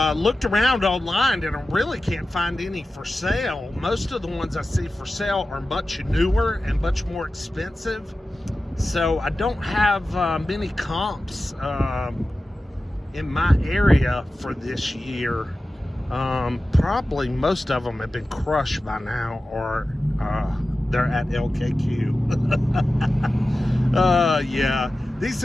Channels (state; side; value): normal; both; correlation 0.94